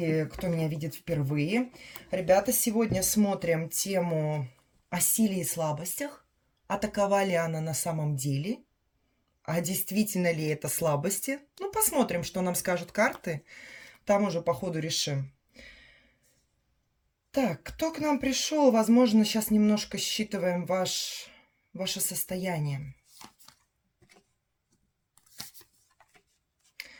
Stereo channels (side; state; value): both; identical; correlation 1.00